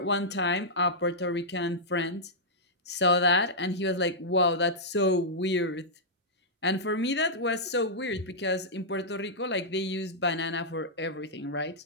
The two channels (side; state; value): both; normal; correlation -0.10